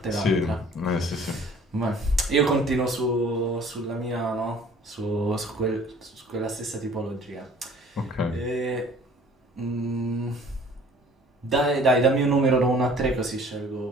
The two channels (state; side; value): normal; both; correlation 0.52